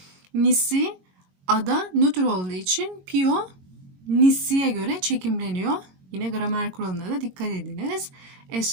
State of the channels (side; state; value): left; late; 22 ms